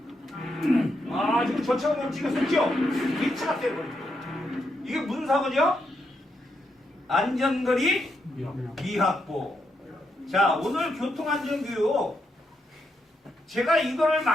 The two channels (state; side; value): normal; both; correlation 0.81